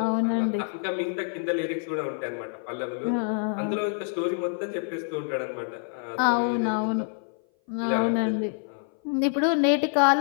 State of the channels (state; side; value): silent; right; 57 dB below the other